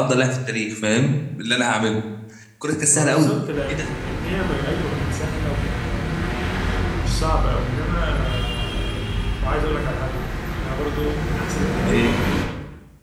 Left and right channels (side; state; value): both; identical; correlation 1.00